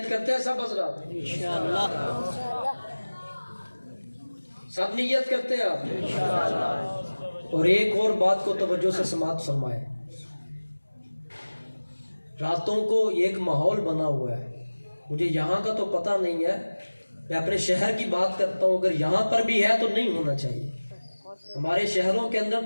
کرتے ہیں سب حضرات؟ سب نیت کرتے ہیں آپ؟ اور ایک اور بات کو توجہ سے سماعت فرمائیں. راتوں کو ایک ماحول بنا ہوا ہے، مجھے یہاں کا تو پتہ نہیں ہے، میں اپنے شہر کی بات کرتا ہوں، اگر یہاں پر بھی ہے تو نہیں ہونا چاہیے. ہمارے شہروں کے اندر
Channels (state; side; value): inverted; both; correlation -1.00